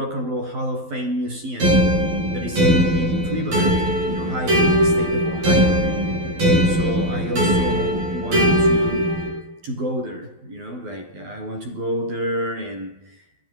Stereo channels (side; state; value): left; late; 12 ms